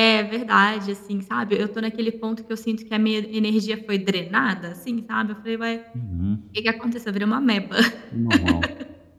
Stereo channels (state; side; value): identical; both; correlation 1.00